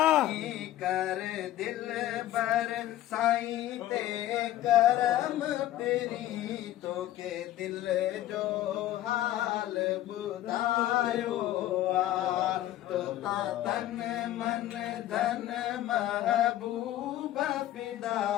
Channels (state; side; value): quieter; right; 13.9 dB